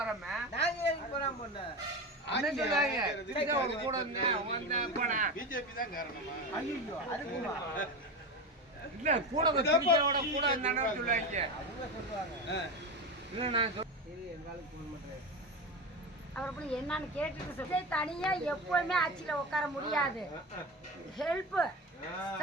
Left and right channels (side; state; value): both; normal; correlation 0.23